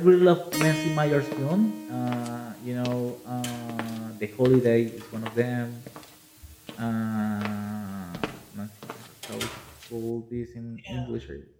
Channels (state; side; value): identical; both; correlation 1.00